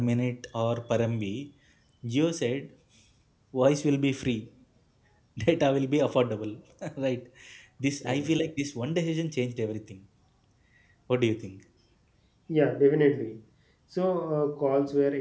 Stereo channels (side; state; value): both; identical; correlation 1.00